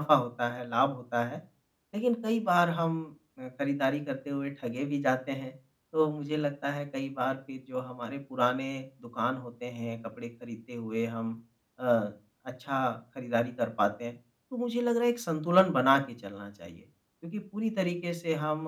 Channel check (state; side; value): identical; both; correlation 1.00